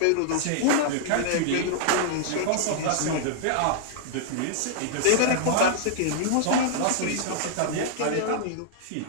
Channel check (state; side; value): different; both; correlation -0.01